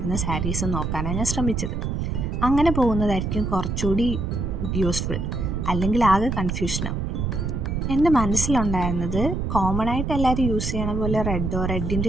സാരീസ് നോക്കാനാണ് ഞാൻ ശ്രമിച്ചത്. അങ്ങനെ പോകുന്നതായിരിക്കും കുറച്ചുകൂടി യൂസ്ഫുൾ, അല്ലെങ്കിൽ ആകെ കൺഫ്യൂഷനാവും. എൻ്റെ മനസ്സിലുണ്ടായിരുന്നത് കോമൺ ആയിട്ട് എല്ലാവരും യൂസ് ചെയ്യണ പോലെ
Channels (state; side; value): noise; right; rumble, 2 dB below the sound